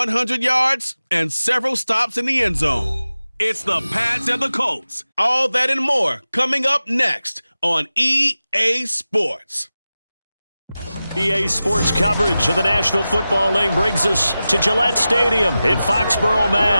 yards and several stops in the end zone. It's the Pats and the Colts. All that and more coming up next on EA Sports. EA Sports coverage of the National Football League brings us to Gillette Stadium in Foxborough,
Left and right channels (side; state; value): both; inverted; correlation -0.94